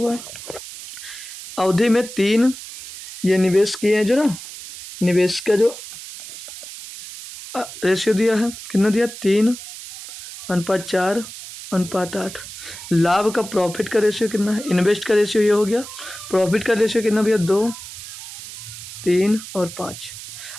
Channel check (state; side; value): noise; right; hiss, 13 dB below the sound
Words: है। अवधि में 3 ये निवेश किए हैं, जो ना निवेश का जो रेशियो दिया है, कितना दिया? 3:4:8। लाभ का प्रॉफिट का रेशियो कितना है? इन्वेस्ट का रेशियो ये हो गया। प्रॉफिट का रेशियो कितना भैया? 2, 3 और 5।